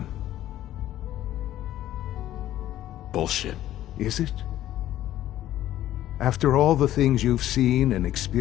Bullshit. Is it? After all the things you've seen and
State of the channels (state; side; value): quieter; right; 13.2 dB